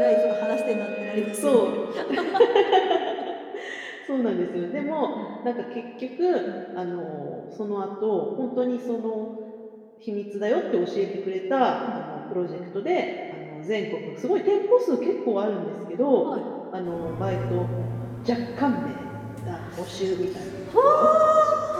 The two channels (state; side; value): identical; both; correlation 1.00